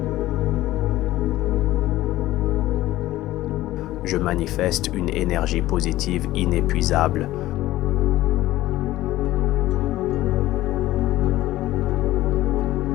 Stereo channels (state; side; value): quieter; right; 15.9 dB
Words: Je manifeste une énergie positive inépuisable.